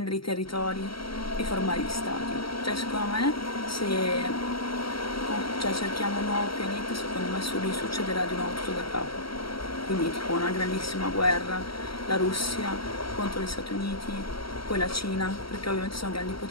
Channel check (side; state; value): right; late; 0.74 ms